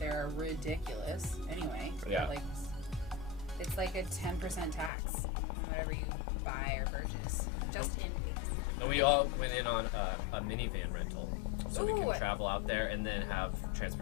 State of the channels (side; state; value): right; drops out; at 4.9 s